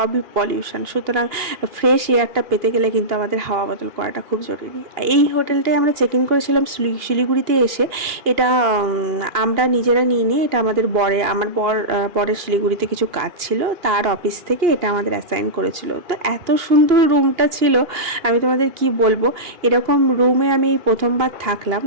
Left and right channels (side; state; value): left; late; 2.8 ms